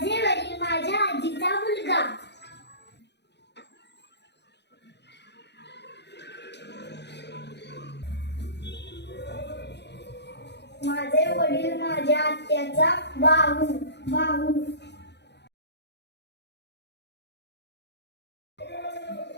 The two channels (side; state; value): right; late; 0.50 ms